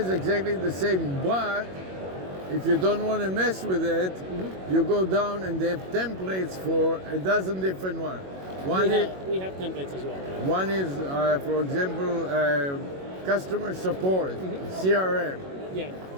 exactly the same, but if you don't want to mess with it, you go down and they have templates for a dozen different ones. We have templates as well. One is, for example, customer support, CRM. Yeah.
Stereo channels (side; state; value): left; late; 21 ms